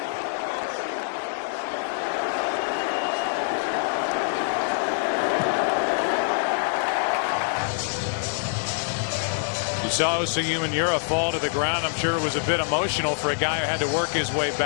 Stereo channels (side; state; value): right; silent; 62 dB below the other